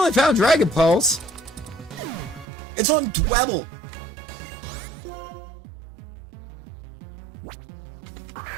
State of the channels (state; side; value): drops out; left; at 2.5 s